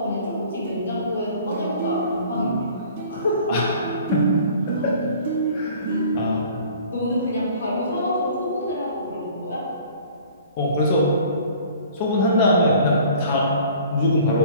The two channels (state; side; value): inverted; both; correlation -0.50